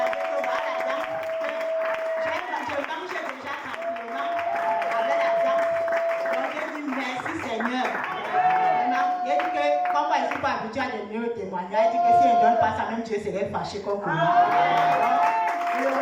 vie, la dent, je mangeais déjà tranquillement avec la dent. Donc je dis merci Seigneur. J'ai dit que, comme moi je ne suis pas habituée à donner le témoignage, j'ai dit que si je ne donne pas ça, même Dieu serait fâché contre moi. Je le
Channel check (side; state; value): both; identical; correlation 1.00